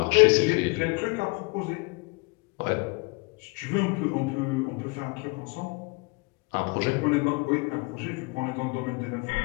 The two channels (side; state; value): right; quieter; 29.0 dB